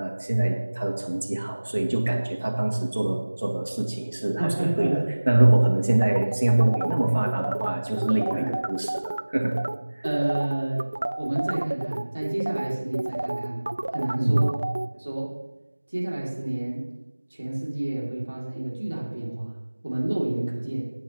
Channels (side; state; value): both; inverted; correlation -1.00